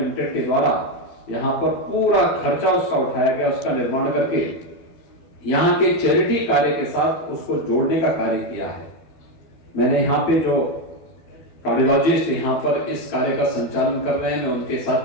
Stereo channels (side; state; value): right; late; 12 ms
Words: के द्वारा यहां पर पूरा खर्चा उसका उठाया गया, उसका निर्माण करके यहां के चैरिटी कार्य के साथ उसको जोड़ने का कार्य किया है। मैंने यहाँ पे जो कार्डियोलॉजिस्ट यहाँ पर इस कार्य का संचालन कर रहे हैं, मैं उनके साथ